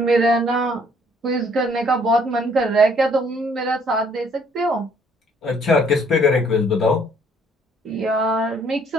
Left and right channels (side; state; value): both; normal; correlation 0.62